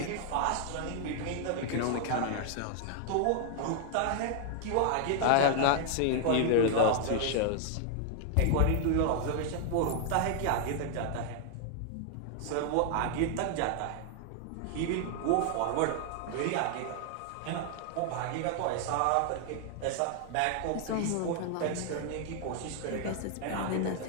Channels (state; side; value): different; both; correlation 0.00